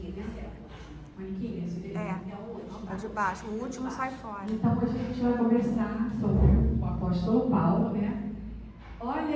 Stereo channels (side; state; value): both; identical; correlation 1.00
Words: Maniquinho, esse aqui? É o de baixo, o último sai fora. Então a gente vai conversar sobre o apóstolo Paulo,